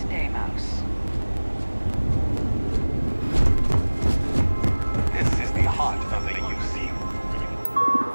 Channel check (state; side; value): inverted; both; correlation -1.00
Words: day, Mouse. This is the heart of the UC.